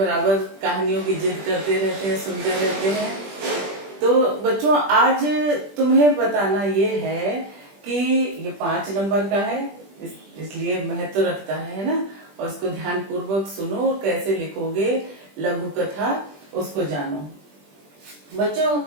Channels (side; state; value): left; late; 20 ms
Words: कहानियों की जिद करते रहते हैं, सुनते रहते हैं। तो बच्चों, आज तुम्हें बताना ये है कि ये 5 नंबर का है, इसलिए महत्व रखता है ना। और इसको ध्यान पूर्वक सुनो, कैसे लिखोगे लघु कथा उसको जानो। बच्चों,